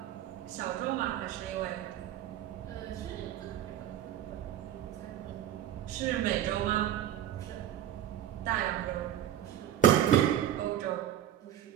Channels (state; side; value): quieter; left; 11.5 dB